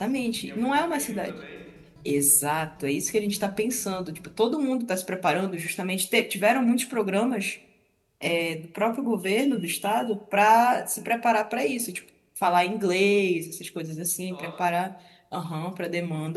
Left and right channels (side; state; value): both; identical; correlation 1.00